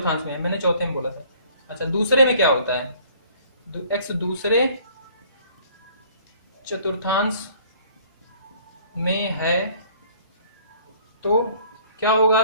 में, मैंने चौथे में बोला था। अच्छा, दूसरे में क्या होता है? एक्स दूसरे चतुर्थांश में है, तो क्या होगा?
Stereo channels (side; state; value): both; inverted; correlation -0.56